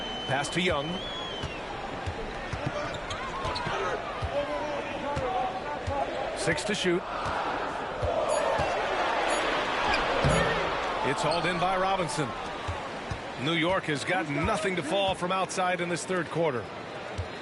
Pass to Young. Six to shoot. It's hauled in by Robinson. New York has got nothing to fall from outside in this 3rd quarter.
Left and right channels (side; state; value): both; identical; correlation 1.00